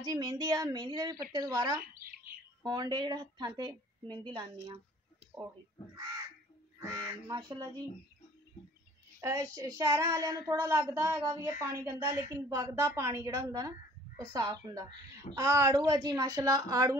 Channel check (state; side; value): normal; both; correlation 0.54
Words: जी मेहंदी आ, मेहंदी के भी पत्ते दोबारा होने डे, जो हत्थां ते मेहंदी लानी माशाल्लाह जी। शहर वाले थोड़ा लगता है भी ये पानी गंदा, लेकिन वगदा पानी जो होंगे ना वो साफ होंगे। आड़ू है जी माशाल्लाह,